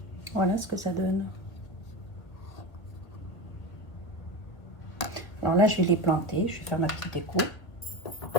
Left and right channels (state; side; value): late; right; 1.5 ms